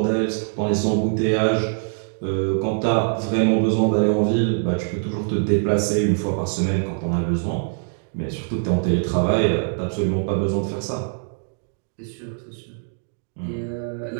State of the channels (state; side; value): silent; left; 63 dB below the other